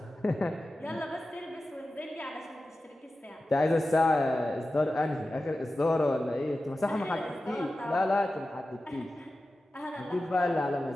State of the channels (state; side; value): normal; both; correlation 0.94